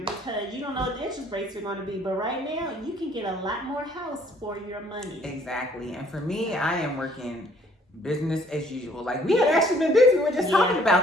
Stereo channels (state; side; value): normal; both; correlation 0.61